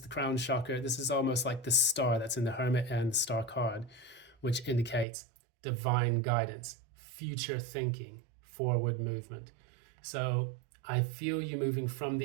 the crown chakra. This is almost like the star that's in the Hermit and the Star card, which indicates divine guidance, future thinking, forward movement. So I feel you moving from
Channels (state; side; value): drops out; left; at 5.1 s